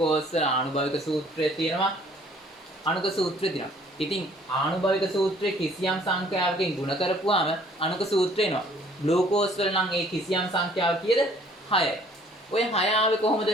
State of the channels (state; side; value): normal; both; correlation 0.58